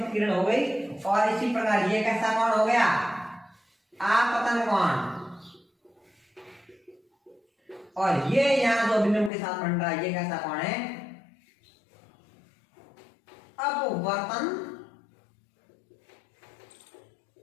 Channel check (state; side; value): drops out; right; at 9.3 s